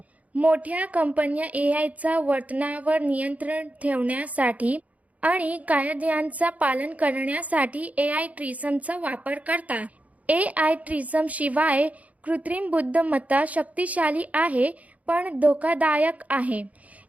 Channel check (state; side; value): late; left; 0.070 ms